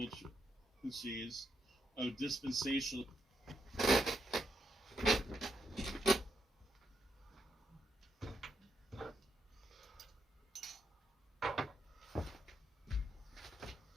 choose of dispensational.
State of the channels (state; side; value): normal; both; correlation 0.79